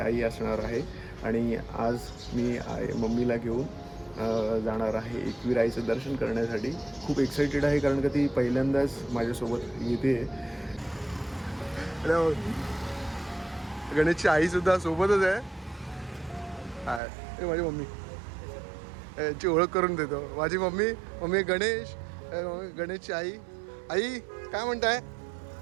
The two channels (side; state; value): left; drops out; at 17.0 s